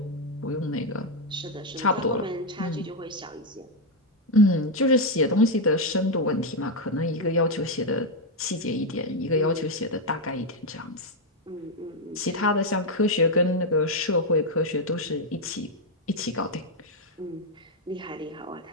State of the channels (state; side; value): normal; both; correlation 0.03